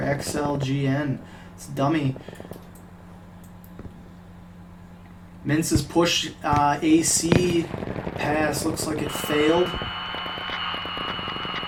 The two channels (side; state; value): both; identical; correlation 1.00